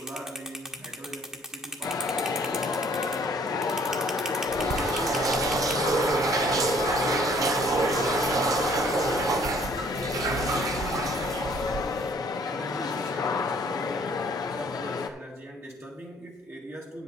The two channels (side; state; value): both; normal; correlation 0.59